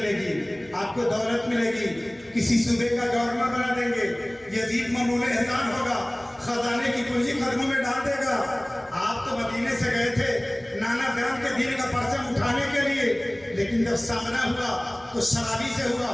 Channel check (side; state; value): left; noise; hum, 28 dB below the sound